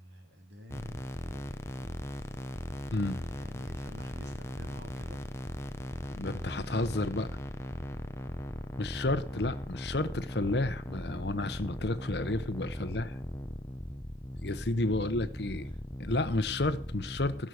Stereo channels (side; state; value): both; normal; correlation 0.62